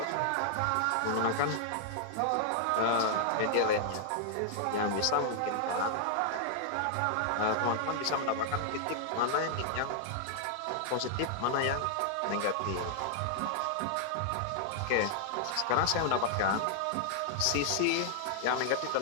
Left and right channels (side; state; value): both; different; correlation -0.01